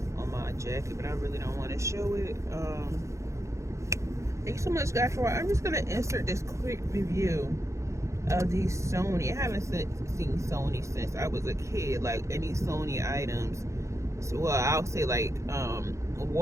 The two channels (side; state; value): left; late; 0.14 ms